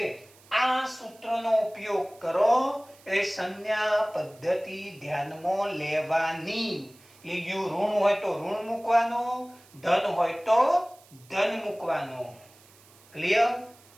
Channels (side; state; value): right; noise; hiss, 26 dB below the sound